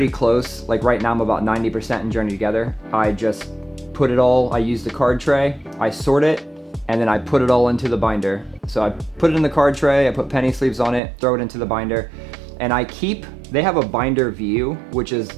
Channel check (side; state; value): left; drops out; at 11.0 s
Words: close, like right now I'm about 90% in Journey Together, I just put it all, I use the card tray, I sort it, and then I put it all into the binder. So I put it in the card tray, I put penny sleeves on it, throw it into the binder, and they have a binder view, which is